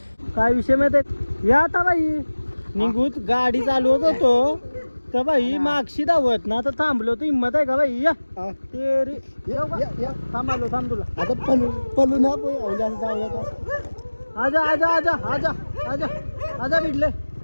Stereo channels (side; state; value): both; inverted; correlation -1.00